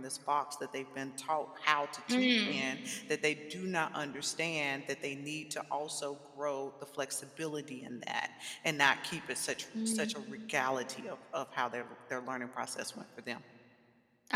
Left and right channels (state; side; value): identical; both; correlation 1.00